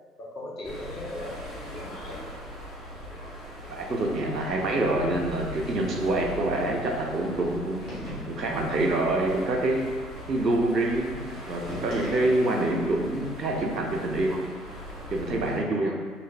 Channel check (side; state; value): both; normal; correlation 0.62